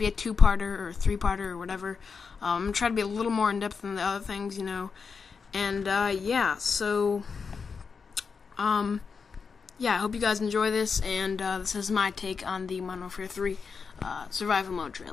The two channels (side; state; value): right; quieter; 5.5 dB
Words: a two-parter or three-parter or whatever. I'm gonna try to be a little more in-depth than the other things, and, yeah, so, yeah, I hope you guys enjoy this, and this is my take on the Modern Warfare 3 survival mode